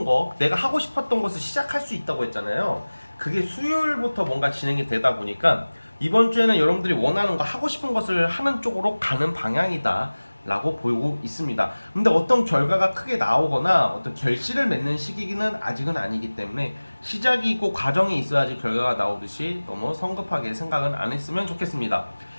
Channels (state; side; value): inverted; both; correlation -1.00